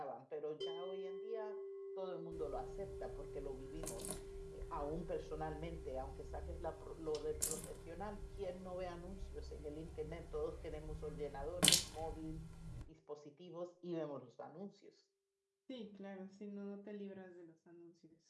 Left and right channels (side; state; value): both; identical; correlation 1.00